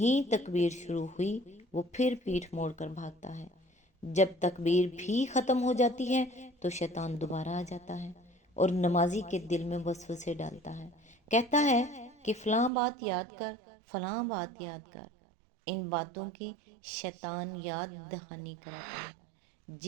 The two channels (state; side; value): drops out; left; at 12.7 s